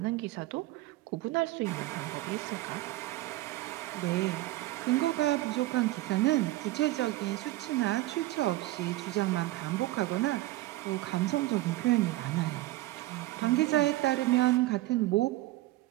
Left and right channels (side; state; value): left; quieter; 17.6 dB